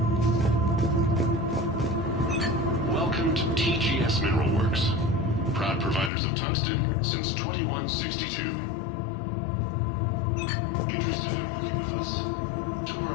Welcome to TGS Mineral Works. Proud providers of tungsten since 2162. Interested in working with us? Tour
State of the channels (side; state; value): right; drops out; at 6.1 s